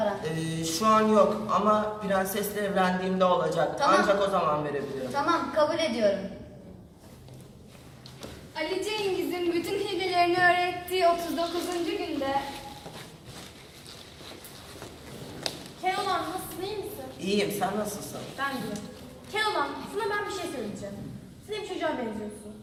Şu an yok ama prensesle evlendiğimde olacak. Tamam. Ancak o zaman verebilirim. Tamam, kabul ediyorum. Ali Cengiz'in bütün hilelerini öğrettiği 39. günde Keloğlan nasılsın, iyi misin? İyiyim, sen nasılsın? Ben de. Keloğlan, sana ben bir şey söyleyeceğim. Sen bir çocuğa benziyorsun.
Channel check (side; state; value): both; identical; correlation 1.00